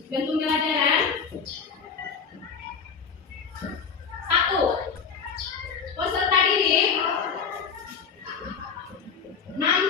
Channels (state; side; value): quieter; right; 6.1 dB